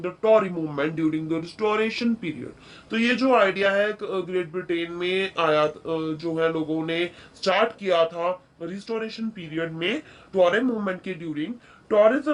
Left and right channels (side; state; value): both; identical; correlation 1.00